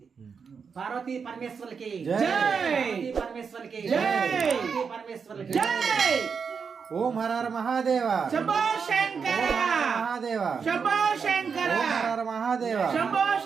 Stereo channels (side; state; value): left; quieter; 5.9 dB